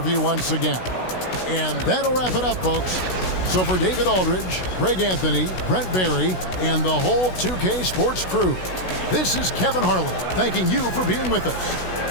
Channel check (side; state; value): right; late; 16 ms